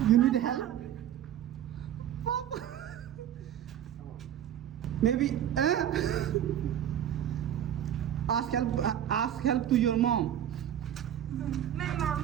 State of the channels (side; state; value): left; quieter; 10.5 dB